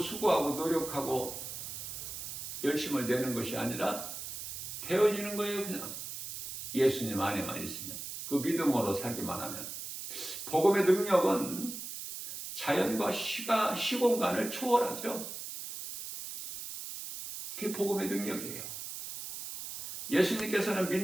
노력하고 열심을 내는 것이 아니라 되어지는 거예요. 그냥 예수님 안에만 있으면, 그 믿음으로 살기만 하면. 복음의 능력은 자연과 시공간을 초월하죠. 그게 복음의 능력이에요. 예수님께서는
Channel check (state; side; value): noise; right; hiss, 8 dB below the sound